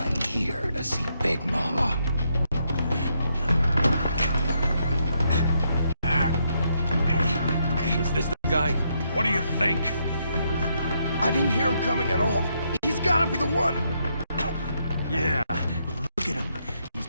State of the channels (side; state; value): both; inverted; correlation -0.77